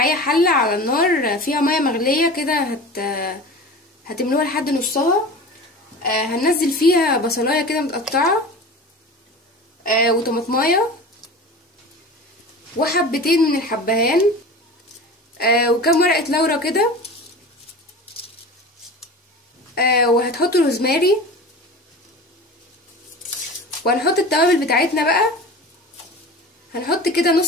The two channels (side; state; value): both; normal; correlation 0.35